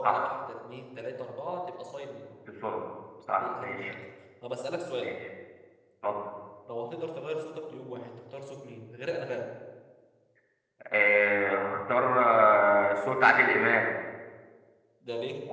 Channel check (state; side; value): identical; both; correlation 1.00